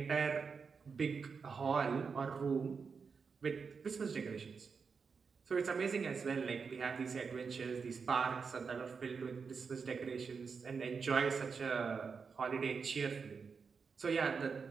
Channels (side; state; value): left; quieter; 5.5 dB